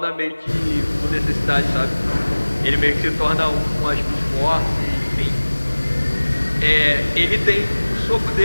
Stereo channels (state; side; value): inverted; both; correlation -1.00